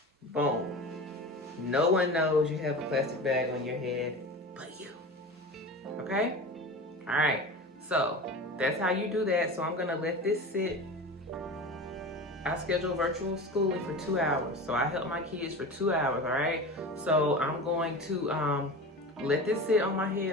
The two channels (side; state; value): both; normal; correlation 0.31